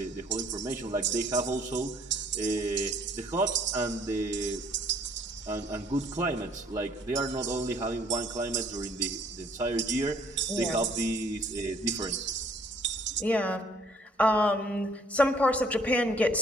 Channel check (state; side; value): normal; both; correlation 0.60